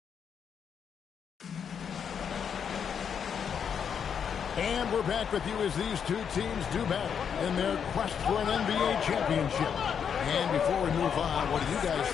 And we're back with you as these two teams do battle in their quest for an NBA championship. And before we move on, what do you guys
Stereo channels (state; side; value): quieter; right; 7.4 dB